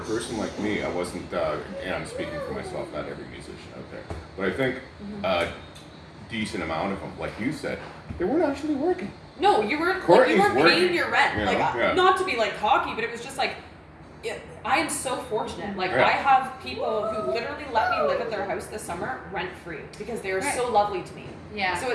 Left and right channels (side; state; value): both; identical; correlation 1.00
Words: person like me, I wasn't, and I'm speaking for myself, not every musician out there, but I think a decent amount of them, like you said, they weren't actually working. No, you weren't paying your rent. Not to be like cocky, but it was just like, I am so fortunate. Like, I have people who literally let me live at their house this summer rent free because they are so lovely to me. Yeah.